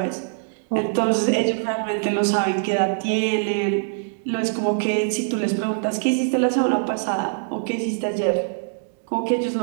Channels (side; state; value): left; silent; digital silence